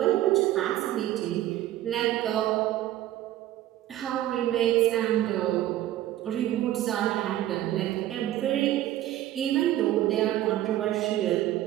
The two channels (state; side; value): quieter; left; 13.8 dB